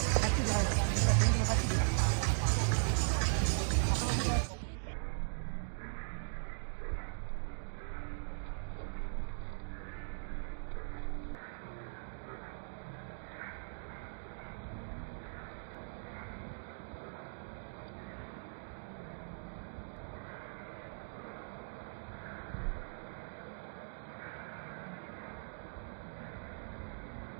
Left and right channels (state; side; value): silent; left; digital silence